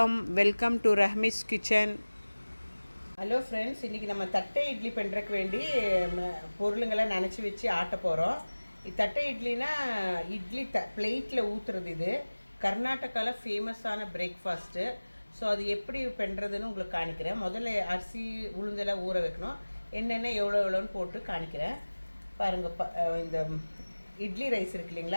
Welcome to Rahmi's kitchen. Hello friends, இன்றைக்கி நம்ம தட்டை இட்லி பண்ணுறதுக்கு வேண்டி பொருளுங்களை நினச்சி வச்சு ஆட்ட போகிறோம். தட்டை இட்லினா இட்லி பிளேட்டில் ஊற்றுறது. இது கர்நாடகாவில் ஃபேமஸான பிரேக்ஃபாஸ்ட்டு. ஸோ அது எப்படி பண்ணுறதுன்னு உங்களுக்கு காணிக்கிறேன். முதல்ல அரிசி உளுந்தெல்லாம் ஊற வைக்கணும். என்னென்ன எவ்வளோன்னு போட்டு காணிக்கிறேன் பாருங்கள். இந்த இட்லி ரைஸ் இருக்கு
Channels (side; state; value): both; inverted; correlation -1.00